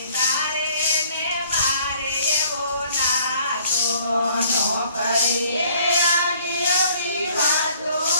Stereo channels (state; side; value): inverted; both; correlation -0.59